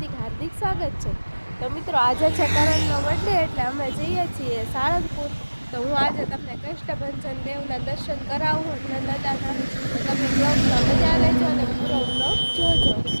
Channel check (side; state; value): both; inverted; correlation -1.00